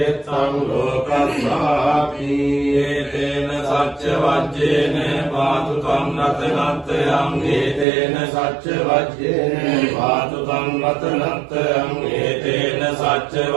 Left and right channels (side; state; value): left; drops out; at 7.9 s